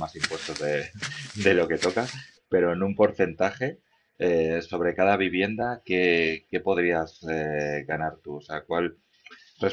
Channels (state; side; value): identical; both; correlation 1.00